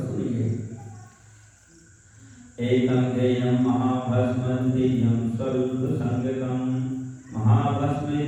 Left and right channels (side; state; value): both; identical; correlation 1.00